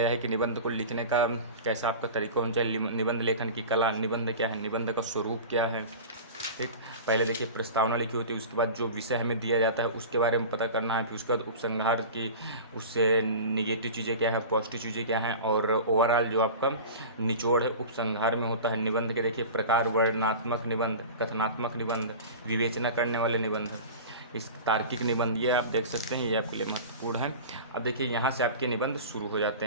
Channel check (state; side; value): inverted; both; correlation -0.34